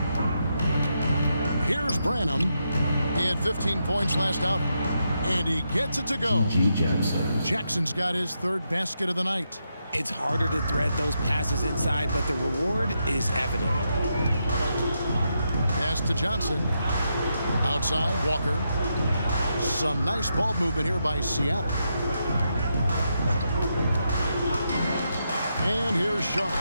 Here's Branham. He had 15 points last outing. And he gets it to go. Jackson's got his 3rd basket of the night. It's harder to thread those passes inside, but the reward is evident. Pass to Johnson. Outside, Walker. Some nice ball movement here by Seattle. And here's Sharp.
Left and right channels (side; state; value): both; inverted; correlation -0.83